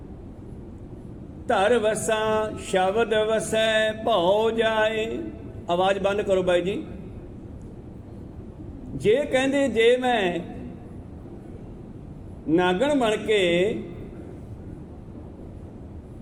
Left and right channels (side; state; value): both; identical; correlation 1.00